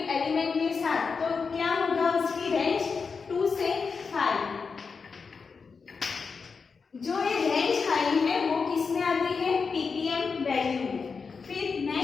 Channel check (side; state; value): right; quieter; 5.2 dB